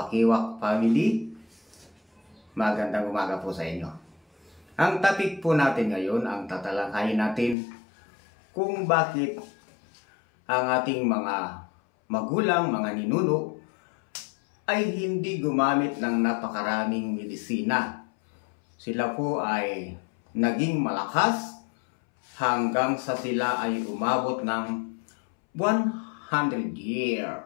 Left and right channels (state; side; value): drops out; right; at 7.6 s